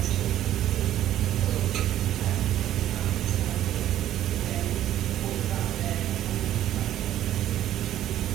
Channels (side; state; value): left; quieter; 12.3 dB